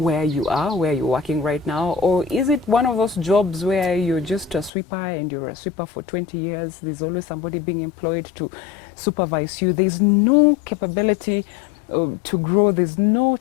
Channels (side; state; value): right; drops out; at 4.7 s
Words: you are, where you're working right now? Or is it one of those jobs where you're just a sweeper and you're a sweeper for 20 years? There's always somebody being employed to supervise you. There's no capability to grow. There's no